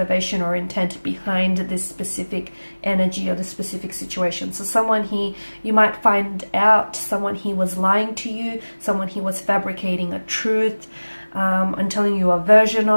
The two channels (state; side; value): inverted; both; correlation -1.00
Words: or intent behind this specific energy or this specific situation. So someone here, you might find out someone here was lying to you, someone here was fabricating a truth, and telling you a version